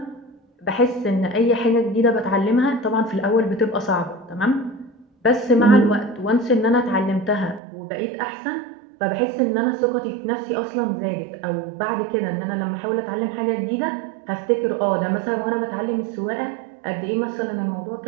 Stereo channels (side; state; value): left; drops out; at 7.6 s